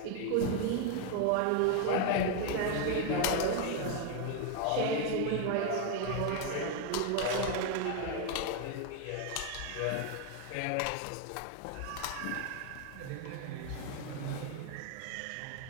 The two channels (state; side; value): different; both; correlation 0.01